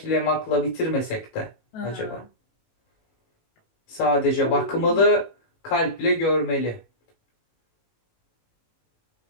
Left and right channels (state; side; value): late; right; 18 ms